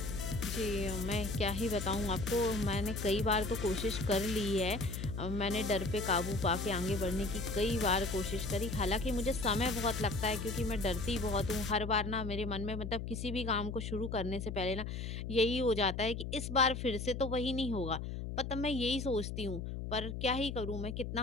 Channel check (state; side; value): noise; left; hum, 5 dB below the sound